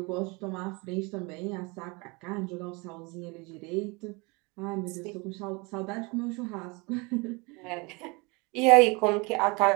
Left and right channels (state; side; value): quieter; left; 27.8 dB